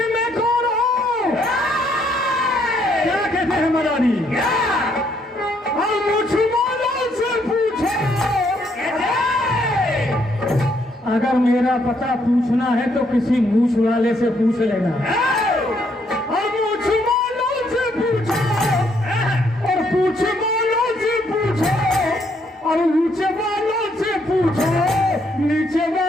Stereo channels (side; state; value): both; normal; correlation 0.71